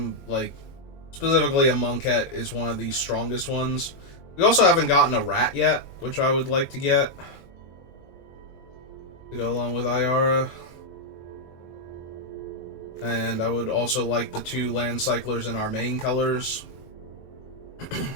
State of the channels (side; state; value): right; late; 21 ms